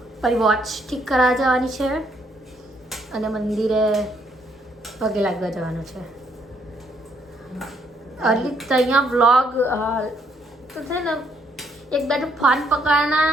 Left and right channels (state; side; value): normal; both; correlation 0.71